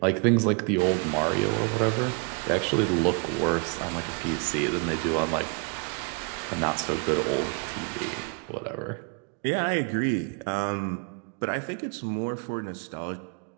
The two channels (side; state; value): left; quieter; 35.9 dB